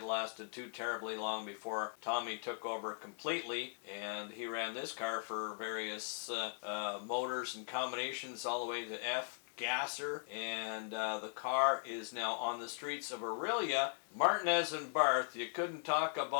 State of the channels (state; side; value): silent; right; digital silence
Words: lasted too terribly long before Tommy took over completely, and he ran this car for various motors and combinations all the way to F gasser, and the car is now on the streets of Aurelia. Martinez and Barth, you couldn't talk